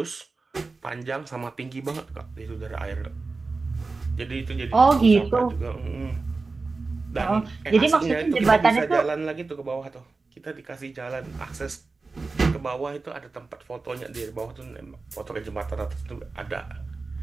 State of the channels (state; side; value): quieter; left; 3.9 dB